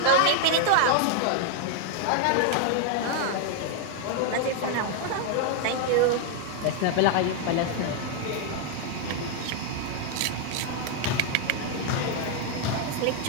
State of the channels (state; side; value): different; both; correlation 0.00